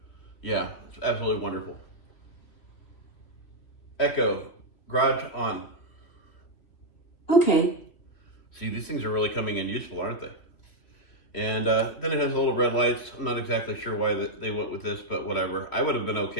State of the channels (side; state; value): right; late; 3.1 ms